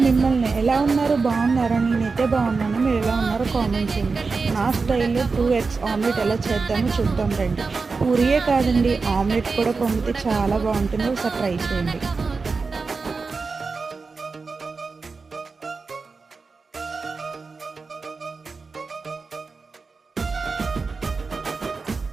మిమ్మల్ని ఎలా ఉన్నారు బాగున్నారా? నేనైతే బాగున్నాను. మీరు ఎలా ఉన్నారో కామెంట్ చేయండి. నా స్టైల్లో 2 ఎగ్స్ ఆమ్లెట్ ఎలా చేద్దామో చూద్దాం రండి. పూరియే కాదండి, ఆమ్లెట్ కూడా పొంగితే చాలా బాగుంటుంది. ఒకసారి ట్రై చేయండి.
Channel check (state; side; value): quieter; left; 4.4 dB